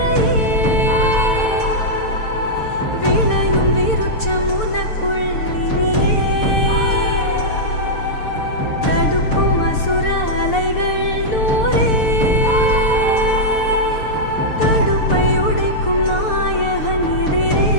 விளையும் விருட்சம் உனக்குள் இனியே. தடுக்கும் அசுர அலைகள் நூறே, தடுப்பை உடைக்கும் நாயகன் எதிரே.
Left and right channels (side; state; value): right; late; 6.7 ms